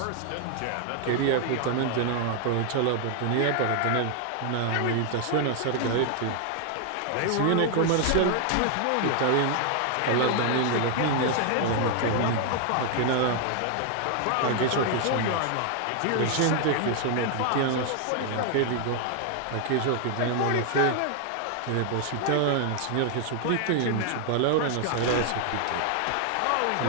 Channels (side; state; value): both; different; correlation 0.00